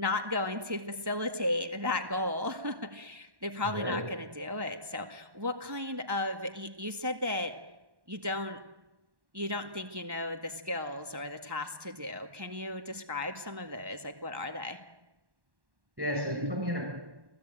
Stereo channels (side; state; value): left; late; 1.1 ms